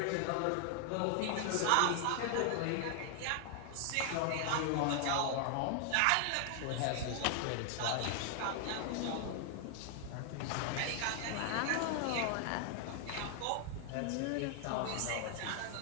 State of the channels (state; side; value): different; both; correlation 0.00